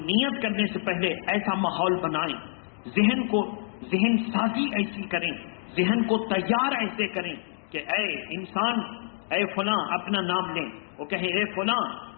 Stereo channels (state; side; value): silent; right; digital silence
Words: نیت کرنے سے پہلے ایسا ماحول بنائیں، ذہن سازی ایسی کریں، ذہن کو تیار ایسے کریں کہ اے انسان، اے فلاں، اپنا نام لیں، وہ کہیں اے فلاں